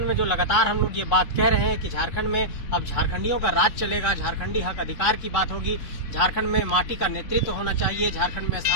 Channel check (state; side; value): late; right; 3.6 ms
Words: में जो लगातार हम लोग ये बात कह रहे हैं कि झारखंड में अब झारखंडियों का राज चलेगा, झारखंडी हक अधिकार की बात होगी, झारखंड में माटी का नेतृत्व होना चाहिए, झारखंड में